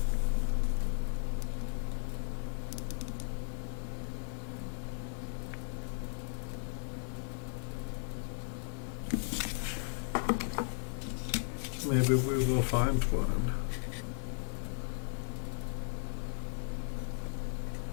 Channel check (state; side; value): silent; right; 54 dB below the other